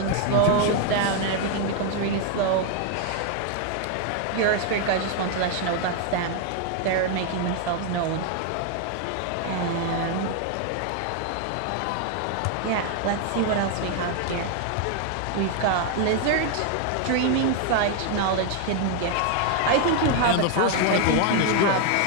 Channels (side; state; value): both; different; correlation 0.00